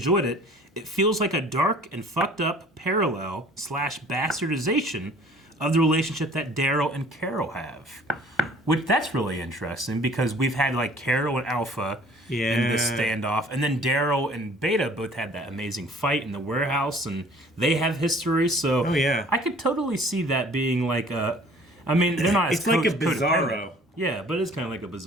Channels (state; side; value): normal; both; correlation 0.52